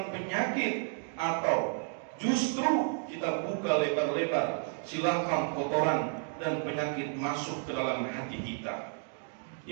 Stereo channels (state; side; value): silent; left; 56 dB below the other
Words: penyakit, atau justru kita buka lebar-lebar silakan kotoran dan penyakit masuk ke dalam hati kita.